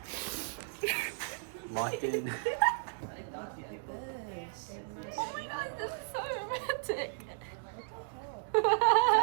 Locked in. Oh my god, this is so romantic.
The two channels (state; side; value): silent; left; digital silence